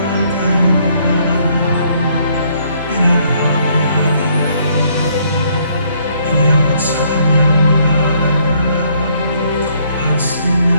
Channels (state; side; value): inverted; both; correlation -0.67